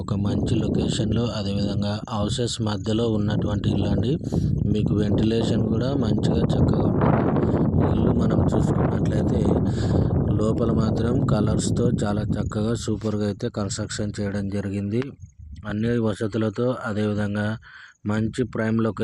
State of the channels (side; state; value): both; identical; correlation 1.00